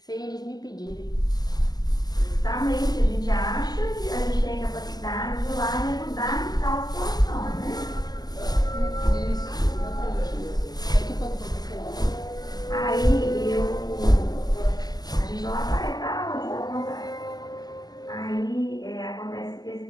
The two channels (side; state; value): right; late; 0.20 ms